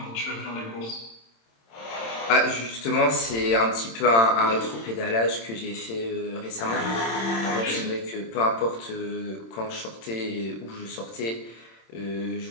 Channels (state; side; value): late; right; 26 ms